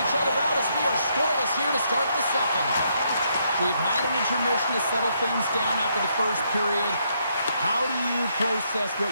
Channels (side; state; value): both; inverted; correlation -0.75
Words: each other out as we are scoreless here to start the second. We've had an intermission to settle things down after the first period. How do you process what